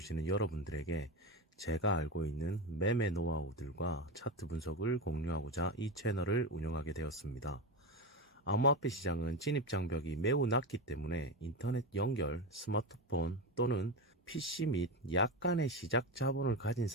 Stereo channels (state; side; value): normal; both; correlation 0.18